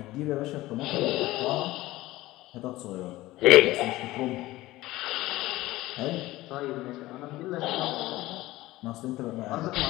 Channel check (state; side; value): quieter; right; 17.7 dB